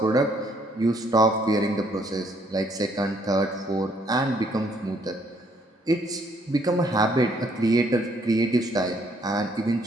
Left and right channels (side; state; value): both; normal; correlation 0.67